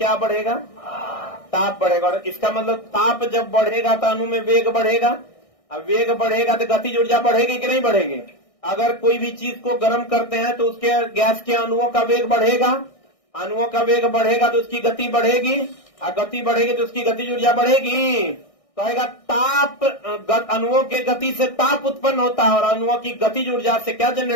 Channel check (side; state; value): right; late; 1.6 ms